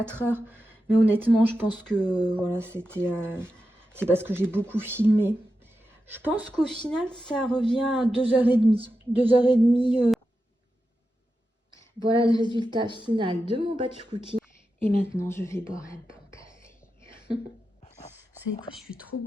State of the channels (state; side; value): normal; both; correlation 0.90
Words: heures. Mais honnêtement, je pense que voilà, c'est parce que j'ai beaucoup filmé. Je pense qu'au final, ça revient à 2h30. 2h30. Voilà le résultat final de mon batch cooking. Et maintenant, je vais boire un bon café. Vous savez quoi, je suis trop